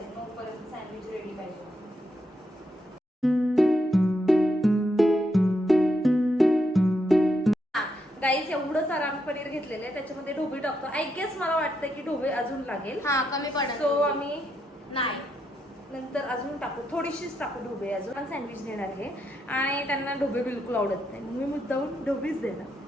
9 पर्यंत सँडविच रेडी पाहिजे. गाईस एवढं सारं आम्ही पनीर घेतलेलं आहे, त्याच्यामध्ये ढोबळी टाकतो. आय गेस मला वाटतं की ढोबळी अजून लागेल. हा कमी पडेल. सो आम्ही नाही नंतर अजून टाकू, थोडीशीच टाकू ढोबळे अजून. पण सँडविच देणार आहे आणि त्यांना ढोबळे बिलकुल आवडत नाही, मी मुद्दाहून ढोबळीच देणार.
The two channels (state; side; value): normal; both; correlation 0.80